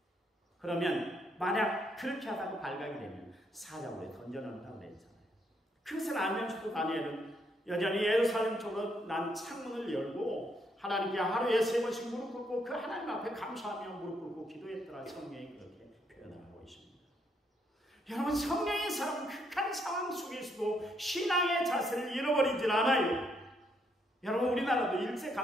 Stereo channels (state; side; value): normal; both; correlation 0.74